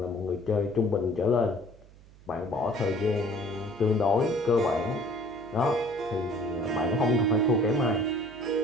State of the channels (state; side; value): noise; right; hum, 23 dB below the sound